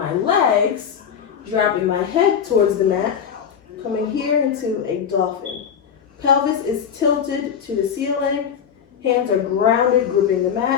legs, dropping my head towards the mat, coming here into a dolphin. Pelvis is tilted to the ceiling, hands are grounded, gripping the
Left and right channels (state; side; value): quieter; right; 7.8 dB